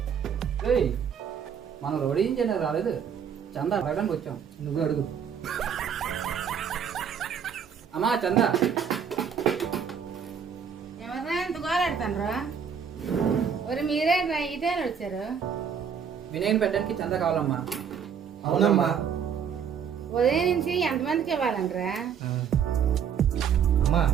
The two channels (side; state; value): left; quieter; 7.4 dB